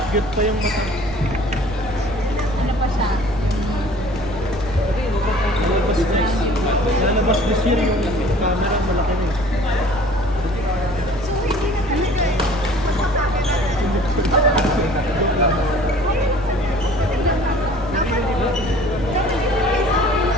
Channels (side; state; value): right; noise; rumble, 14 dB below the sound